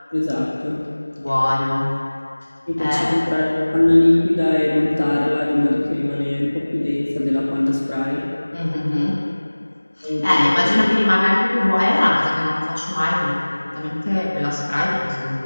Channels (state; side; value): inverted; both; correlation -1.00